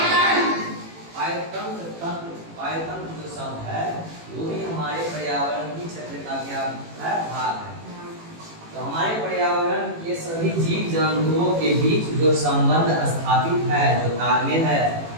पायतंत्र जो शब्द है वो भी हमारे पर्यावरण की क्षेत्र का क्या है? भाग है। तो हमारे पर्यावरण के सभी जीव जंतुओं के बीच जो संबंध स्थापित है, जो तालमेल है,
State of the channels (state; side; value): late; left; 18 ms